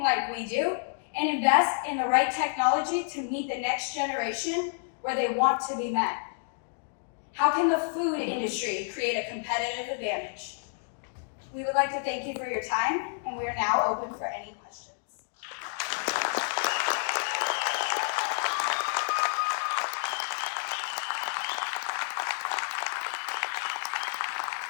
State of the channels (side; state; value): right; silent; digital silence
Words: like we do, and invest in the right technology to meet the next generation where they want to be met. How can the food industry create a competitive advantage? We would like to thank you for your time, and we are now open for any questions.